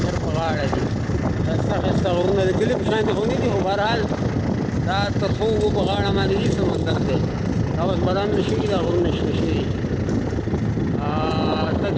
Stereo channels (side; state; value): both; identical; correlation 1.00